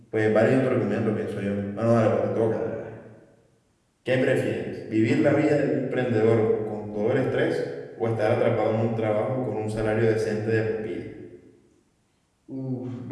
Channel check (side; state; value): both; identical; correlation 1.00